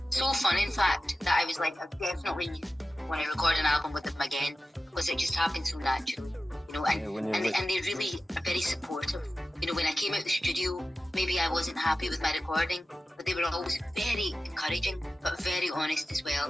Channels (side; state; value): both; normal; correlation 0.94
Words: So fun, in fact, that I was like, I definitely want to record an album with them again because it just happened so naturally. You know, and they really are very supportive. You know, when I came out the studio, maybe I wasn't happy with my recording, but they were always very encouraging, but very honest as